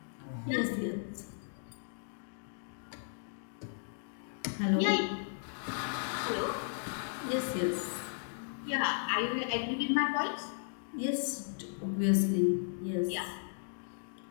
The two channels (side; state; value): right; silent; digital silence